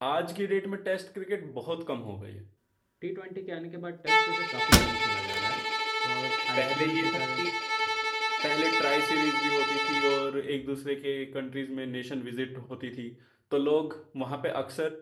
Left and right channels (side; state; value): both; identical; correlation 1.00